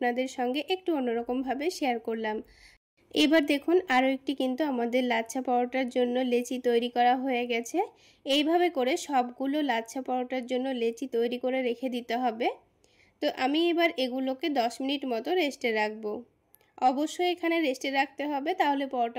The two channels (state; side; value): identical; both; correlation 1.00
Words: সঙ্গে একটু অন্যরকমভাবে শেয়ার করলাম। এবার দেখুন আরও একটি কিন্তু আমাদের লাচ্ছা পরোটার জন্য লেচি তৈরি করা হয়ে গেছে। এইভাবে করে সবগুলো লাচ্ছা পরোটার জন্য লেচি তৈরি করে রেখে দিতে হবে। তো আমি এবার এগুলোকে 10 মিনিট মতো রেস্টে রাখবো। অবশ্যই এখানে রেস্টে রাখতে হবে, তাহলে